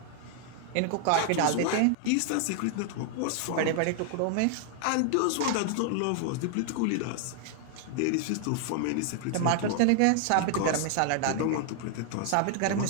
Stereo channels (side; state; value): both; different; correlation 0.00